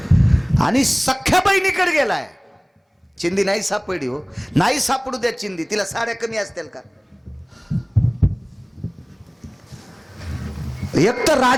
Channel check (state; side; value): identical; both; correlation 1.00